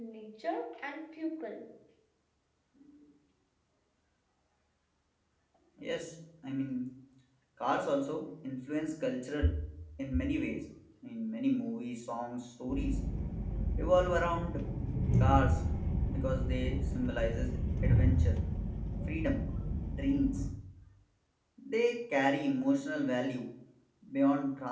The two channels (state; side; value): identical; both; correlation 1.00